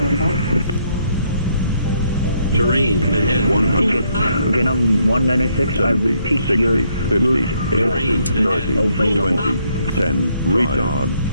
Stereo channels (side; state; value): both; inverted; correlation -0.72